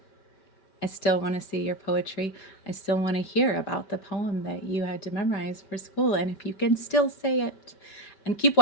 I still want to see your poetry. I still want to hear about the poem that you had to memorize for school. And if you can still say it. And keep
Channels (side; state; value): right; late; 5.2 ms